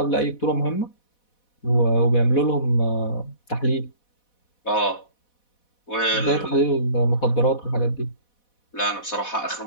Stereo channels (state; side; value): late; right; 4.1 ms